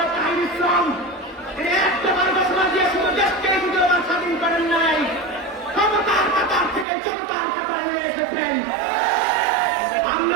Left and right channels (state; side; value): drops out; left; at 6.9 s